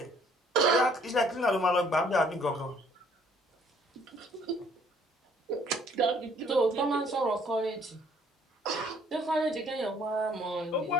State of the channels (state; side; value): normal; both; correlation 0.61